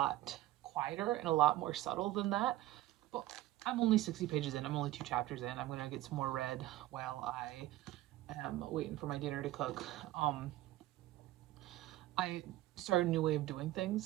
quieter and a lot more subtle than that. But I'm only 60 pages in. I'm only 2 chapters in. I'm gonna get some more read while I am waiting for my dinner to cook. I started a new way of doing things,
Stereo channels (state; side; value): quieter; left; 15.8 dB